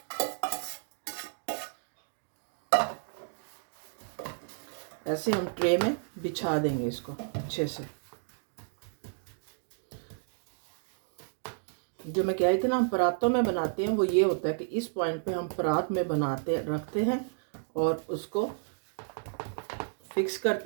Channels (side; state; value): left; silent; digital silence